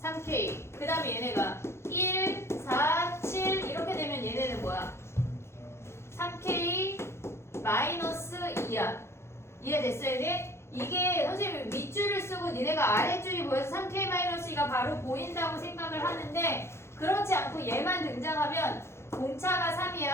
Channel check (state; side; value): late; right; 0.13 ms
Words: 3K. 그 다음에 얘네가 1, 4, 7 이렇게 되면 얘네는 뭐야? 3K 마이너스 2야. 이해됐어 얘네? 이게 선생님이 밑줄을 쓰고 니네가 아랫줄이 보여서 3K-2가 바로 보인다고 생각을 하는데 그렇지 않고 얘만 등장하면 공차가